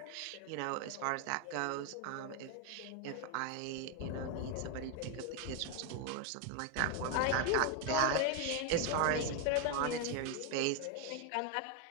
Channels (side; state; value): both; different; correlation 0.01